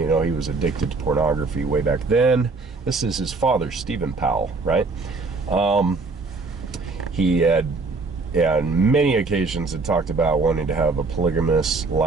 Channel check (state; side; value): quieter; left; 3.8 dB